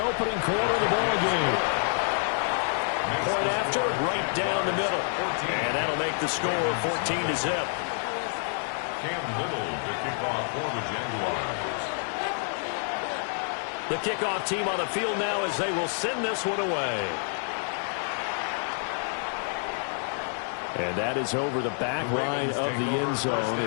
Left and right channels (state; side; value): silent; right; 59 dB below the other